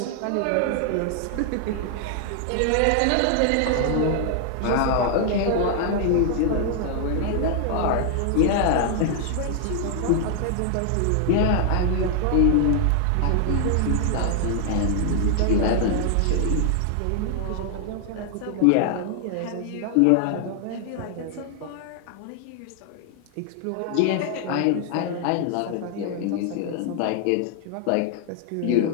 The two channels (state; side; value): different; both; correlation 0.00